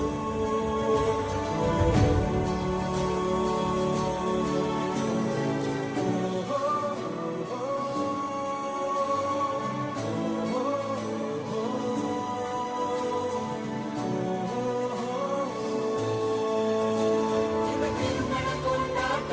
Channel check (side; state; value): both; identical; correlation 1.00